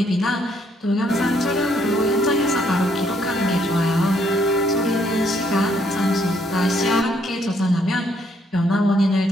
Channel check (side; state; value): both; normal; correlation 0.70